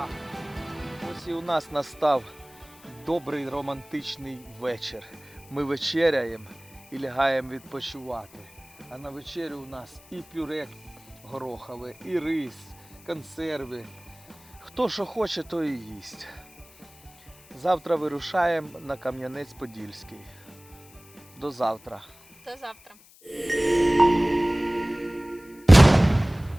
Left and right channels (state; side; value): noise; left; hiss, 25 dB below the sound